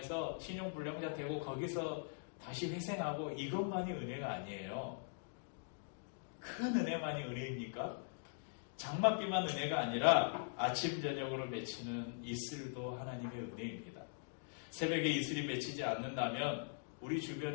신용불량자 되고 거기서 다시 회생하고 이것만이 은혜가 아니에요. 큰 은혜만이 은혜입니까? 장맛비만 은혜가 아니라 아침 저녁으로 맺히는 이슬도 하나님의 은혜입니다. 새벽에 이슬이 맺히지 않는다면 우리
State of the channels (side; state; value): right; silent; digital silence